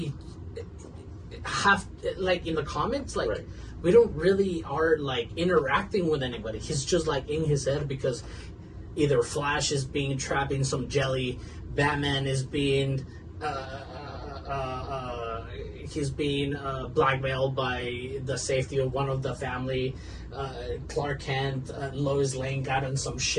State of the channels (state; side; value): identical; both; correlation 1.00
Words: have in the comics right. We don't really are interacting with anybody. He's just in his head, because either Flash is being trapped in some jelly, Batman is being he's being blackmailed by the safety of one of the family, Clark Kent, Lois Lane got in some